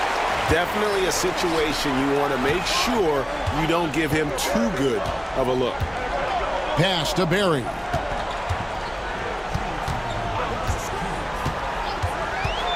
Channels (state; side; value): identical; both; correlation 1.00